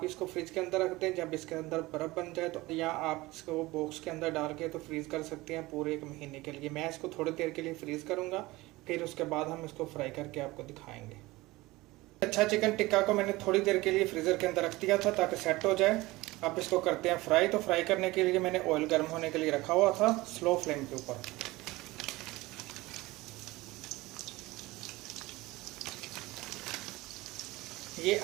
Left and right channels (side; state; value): left; quieter; 20.2 dB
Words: इसको फ्रिज के अंदर रख दें। जब इसके अंदर बर्फ़ बन जाए तो या आप इसको बॉक्स के अंदर डाल के तो फ्रीज़ कर सकते हैं पूरे 1 महीने के लिए। मैं इसको थोड़ी देर के लिए फ्रीज़ करूँगा, फिर उसके बाद हम इसको फ्राई करके आपको दिखाएंगे। अच्छा, चिकन टिक्का को मैंने थोड़ी देर के लिए फ्रीज़र के अंदर रख दिया था ताकि सेट हो जाए। अब इसको करते हैं फ्राई। तो फ्राई करने के लिए मैंने ऑयल गर्म होने के लिए रखा हुआ था स्लो फ्लेम के ऊपर। ये